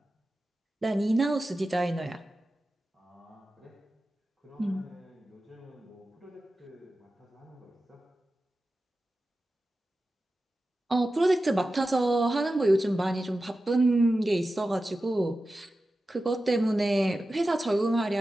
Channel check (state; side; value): normal; both; correlation 0.93